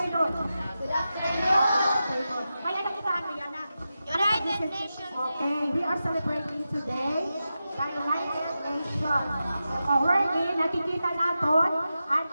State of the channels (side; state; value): both; inverted; correlation -0.91